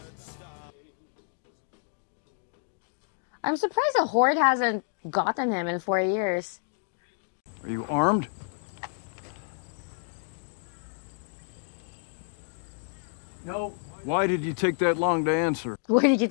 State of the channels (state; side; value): silent; right; digital silence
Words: I'm surprised the Horde hasn't gotten him in 4 years. Are you armed? No. Why did you take that long to answer? Where did you